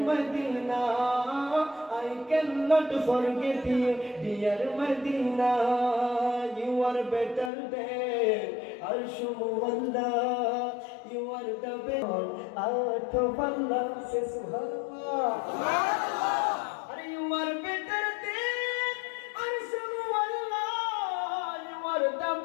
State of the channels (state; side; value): drops out; right; at 7.5 s